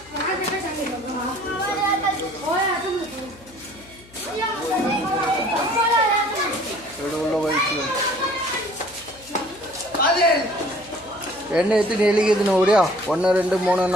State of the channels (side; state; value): left; noise; hum, 25 dB below the sound